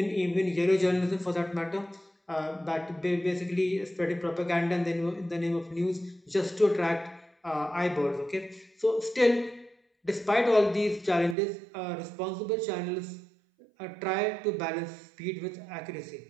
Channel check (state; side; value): drops out; left; at 11.4 s